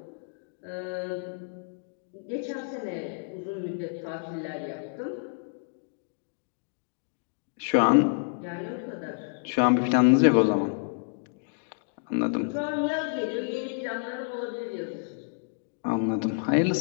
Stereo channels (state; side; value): silent; right; digital silence